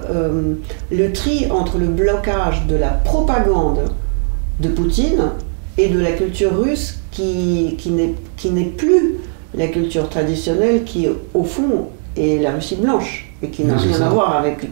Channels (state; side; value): silent; left; 55 dB below the other